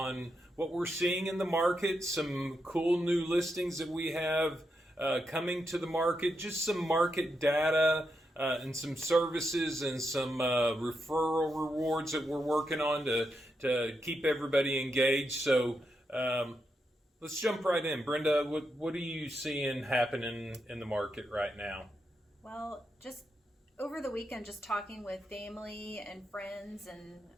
what we're seeing in the market, some cool new listings that we have coming to the market, just some market data and some services and some referral rewards that we're working on to keep everybody engaged. So let's jump right in. Brenda, what are you seeing happening in the market right now? Well, just over the weekend, just talking with family and friends, and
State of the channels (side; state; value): both; normal; correlation 0.84